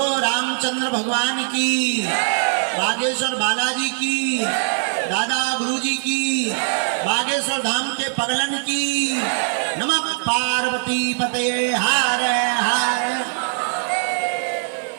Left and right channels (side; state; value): left; silent; 63 dB below the other